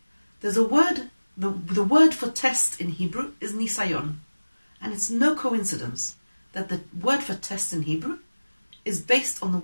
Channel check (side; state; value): both; inverted; correlation -1.00